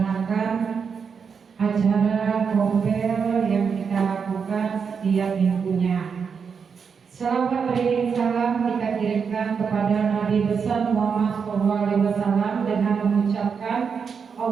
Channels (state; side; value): quieter; left; 6.2 dB